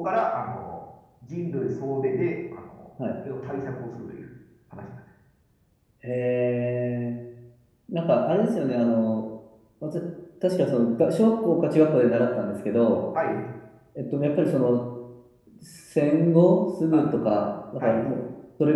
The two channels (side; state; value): both; identical; correlation 1.00